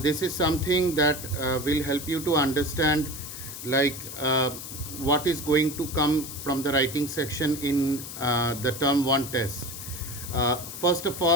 this is something that will help you to understand what is going to come from the writing section in the term 1 test. First of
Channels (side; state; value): left; noise; hiss, 10 dB below the sound